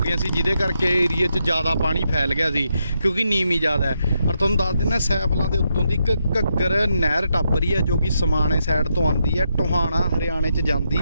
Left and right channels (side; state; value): both; inverted; correlation -0.81